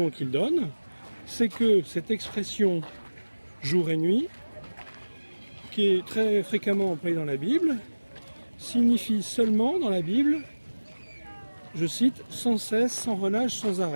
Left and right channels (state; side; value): inverted; both; correlation -1.00